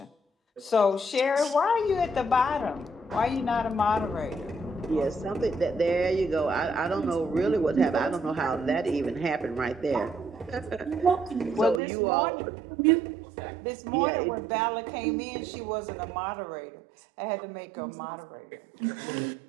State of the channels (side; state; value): left; drops out; at 11.8 s